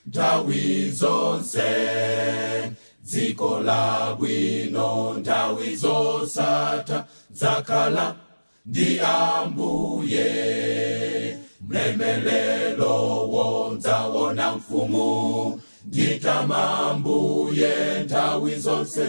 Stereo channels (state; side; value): inverted; both; correlation -1.00